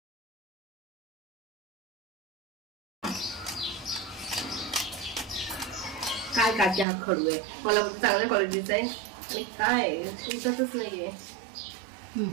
काय काकी, हा खडू आहे. मला चांगल्या क्वालिटीचा आहे आणि काय उठतच नाहीये.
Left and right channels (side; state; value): left; drops out; at 6.9 s